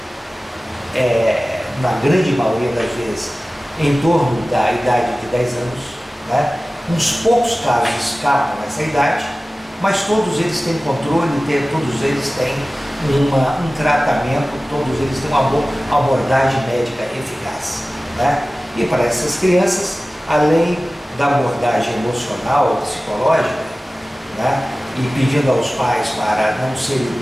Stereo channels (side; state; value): both; normal; correlation 0.97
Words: na grande maioria das vezes, em torno da idade de 10 anos, né? Uns poucos casos escapam nessa idade, mas todos eles têm controle, todos eles têm um tratamento, todos eles têm uma abordagem médica eficaz, né? E para essas crianças, além da abordagem emocional ou psicológica, né? E pedindo aos pais para não serem